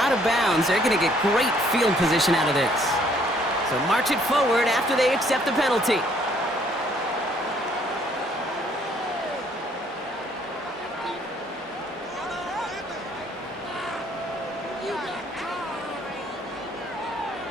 out of bounds. They're going to get great field position out of this. So march it forward after they accept the penalty.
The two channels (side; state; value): both; normal; correlation 0.64